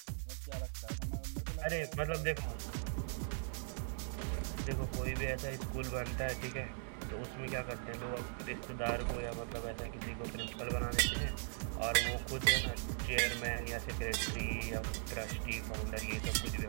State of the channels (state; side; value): silent; left; digital silence